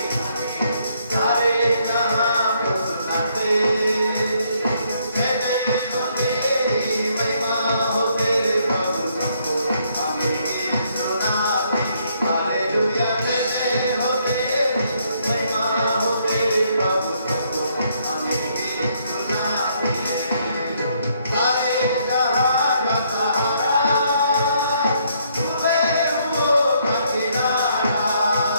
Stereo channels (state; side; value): inverted; both; correlation -0.70